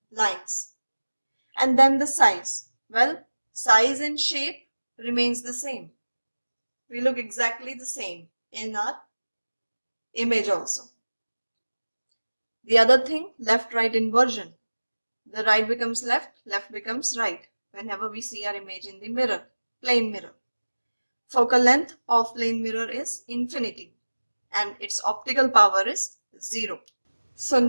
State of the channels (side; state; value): both; inverted; correlation -1.00